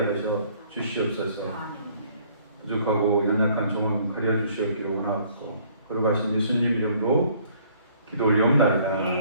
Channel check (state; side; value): inverted; both; correlation -0.60